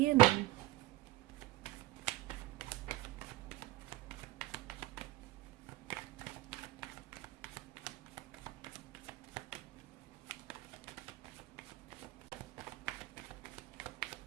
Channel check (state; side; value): quieter; left; 17.1 dB